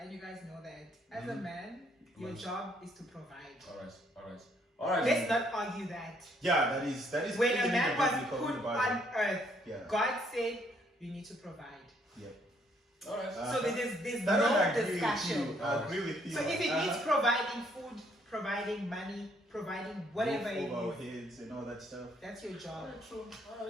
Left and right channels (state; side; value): normal; both; correlation 0.68